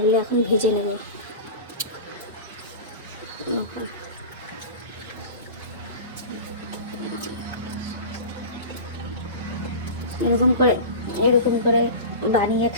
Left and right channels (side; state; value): both; inverted; correlation -0.31